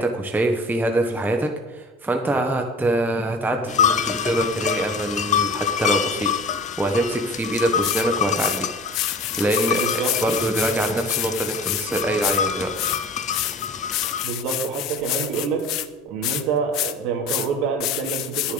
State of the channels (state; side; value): normal; both; correlation 0.39